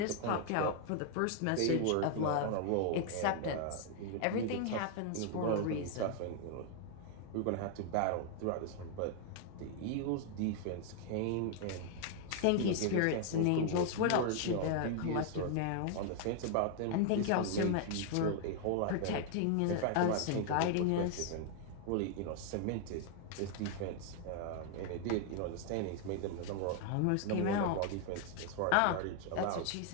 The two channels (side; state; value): both; different; correlation 0.00